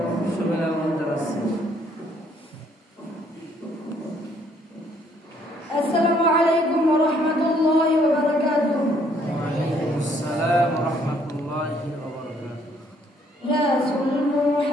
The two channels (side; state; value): both; normal; correlation 0.65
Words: সবাই আহ্বান জানাচ্ছি। আসসালামু আলাইকুম ওয়া রাহমাতুল্লাহি ওয়া বারাকাতুহু। ওয়া আলাইকুম আসসালাম ওয়া রাহমাতুল্লাহি ওয়া বারাকাতুহু। রাসূল